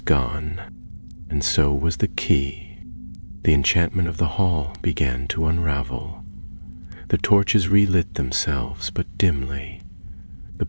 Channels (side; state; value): both; inverted; correlation -1.00